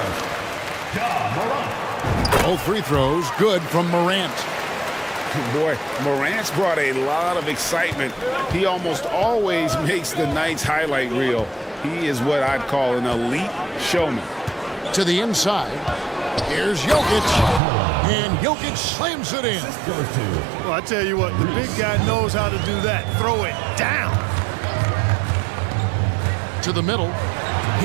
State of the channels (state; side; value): drops out; left; at 17.6 s